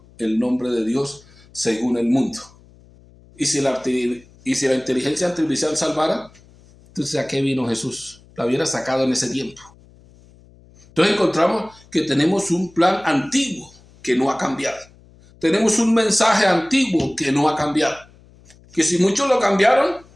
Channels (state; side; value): noise; left; hum, 27 dB below the sound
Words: el nombre de Dios según el mundo. Y si la inteligencia artificial salvara, entonces ¿a qué vino Jesús? La hubiera sacado en ese tiempo. Entonces encontramos que tenemos un plan antiguo que no ha cambiado. Tenemos un mensaje antiguo que no ha cambiado. Que si muchos lo cambiaron,